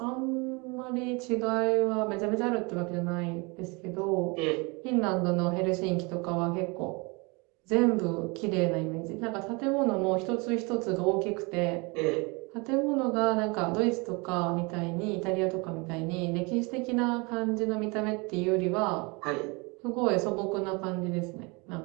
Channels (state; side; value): quieter; left; 28.6 dB